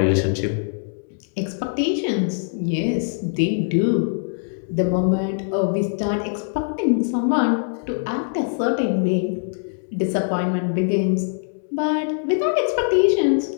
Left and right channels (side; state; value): right; silent; digital silence